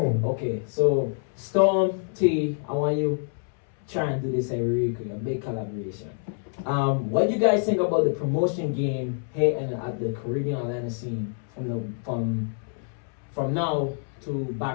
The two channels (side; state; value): right; silent; 61 dB below the other